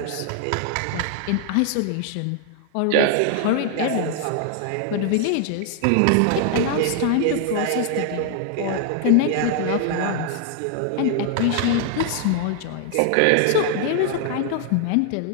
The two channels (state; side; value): different; both; correlation 0.00